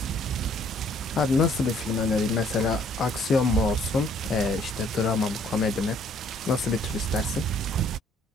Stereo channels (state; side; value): normal; both; correlation 0.62